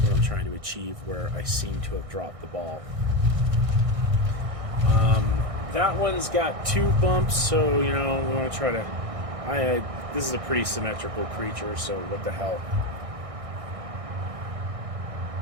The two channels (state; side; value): late; left; 1.6 ms